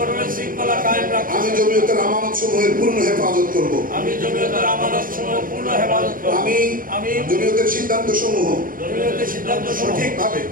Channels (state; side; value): late; left; 0.40 ms